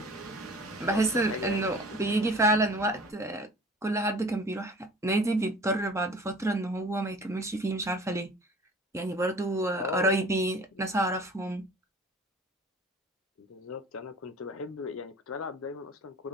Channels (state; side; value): normal; both; correlation 0.46